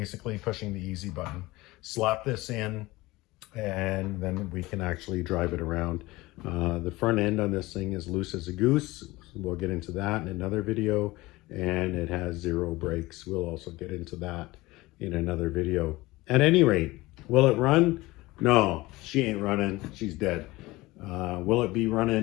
pushing the easy button. Slap this in, and then we can actually drive it around. The front end on this thing is loose as a goose. We'll get into that in another video. And it has 0 brakes. We'll also get into that in another video. At any rate, will it run? No, she ain't running. She's dead. Will it be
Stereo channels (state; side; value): quieter; right; 20.1 dB